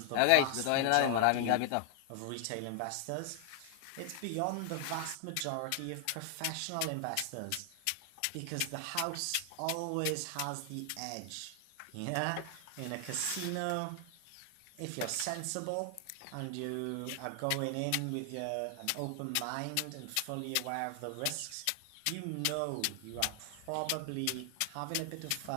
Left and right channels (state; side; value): different; both; correlation 0.00